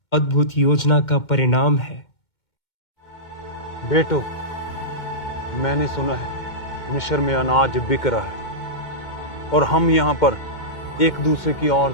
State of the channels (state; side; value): late; right; 2.2 ms